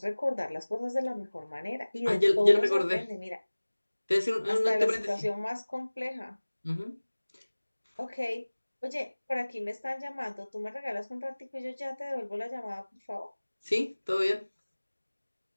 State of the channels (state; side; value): inverted; both; correlation -1.00